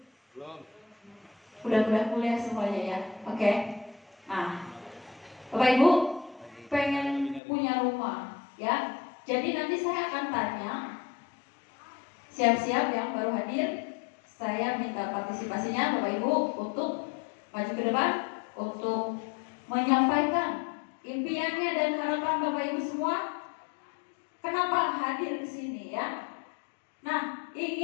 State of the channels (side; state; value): right; drops out; at 7.4 s